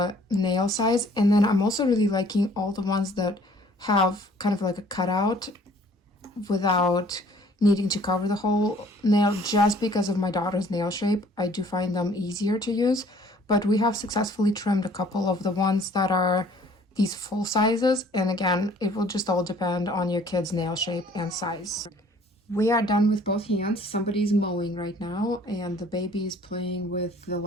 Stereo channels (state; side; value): normal; both; correlation 0.56